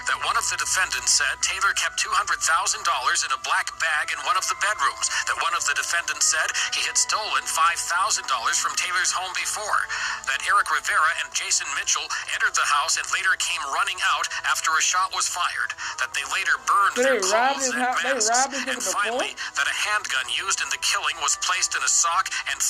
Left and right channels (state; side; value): identical; both; correlation 1.00